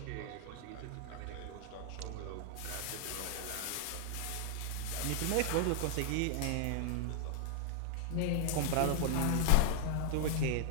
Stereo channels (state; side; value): different; both; correlation -0.01